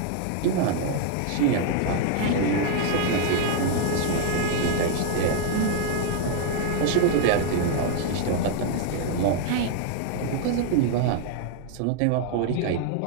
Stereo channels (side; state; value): both; different; correlation 0.00